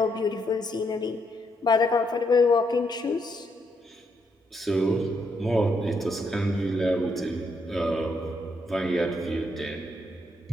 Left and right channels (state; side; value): normal; both; correlation 0.76